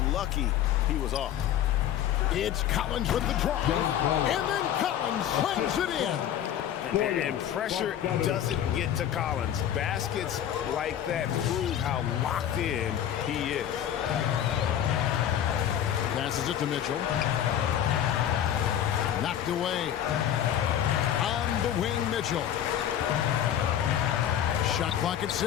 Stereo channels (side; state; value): right; quieter; 10.4 dB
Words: lucky he was off. It's Collins with the drive. And then Collins slams it in. And pressure doesn't get to Collins. Baskets like that prove how locked in he is. Passes it to Mitchell. Knocked away. On the wing, Mitchell. Shot clock at